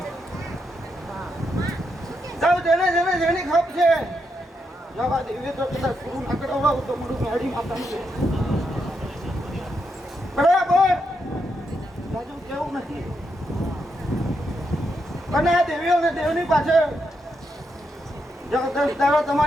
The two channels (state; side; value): normal; both; correlation 0.82